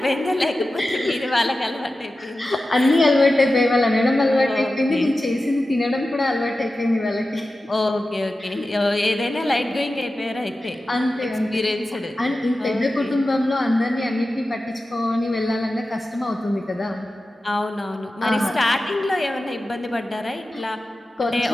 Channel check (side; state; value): both; normal; correlation 0.94